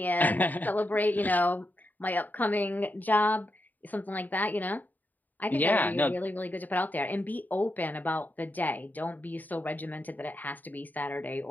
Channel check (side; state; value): right; late; 0.085 ms